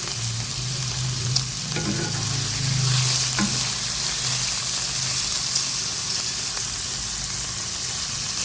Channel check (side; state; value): both; identical; correlation 1.00